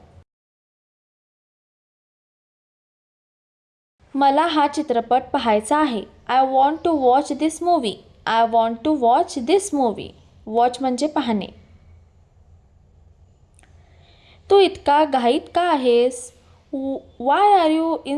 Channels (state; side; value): identical; both; correlation 1.00